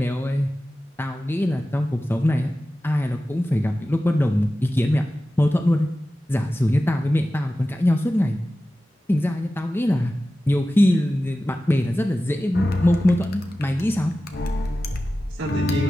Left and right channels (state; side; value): normal; both; correlation 0.95